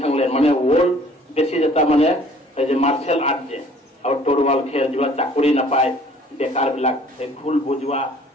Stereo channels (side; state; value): both; normal; correlation 0.54